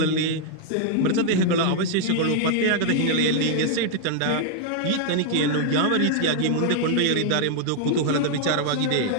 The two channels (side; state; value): both; different; correlation 0.00